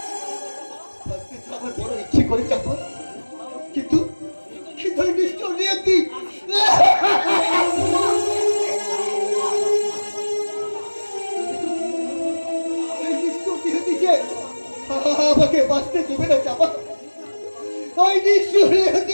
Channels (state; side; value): inverted; both; correlation -1.00